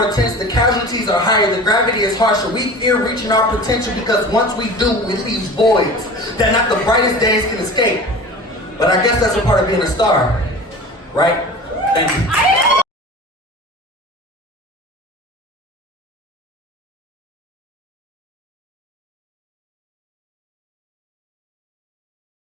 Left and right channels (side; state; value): both; normal; correlation 0.37